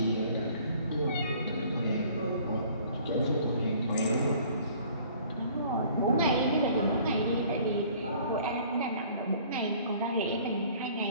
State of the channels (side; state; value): both; inverted; correlation -0.54